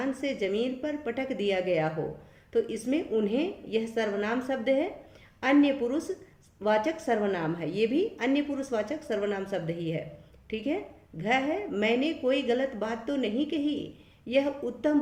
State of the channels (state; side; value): identical; both; correlation 1.00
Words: से जमीन पर पटक दिया गया हो। तो इसमें उन्हें यह सर्वनाम शब्द है, अन्य पुरुषवाचक सर्वनाम है, ये भी अन्य पुरुषवाचक सर्वनाम शब्द ही है। ठीक है, घ है, मैंने कोई गलत बात तो नहीं कही। यह उत्तम